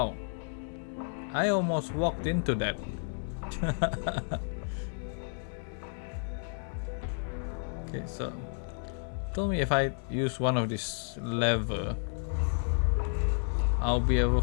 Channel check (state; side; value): silent; right; digital silence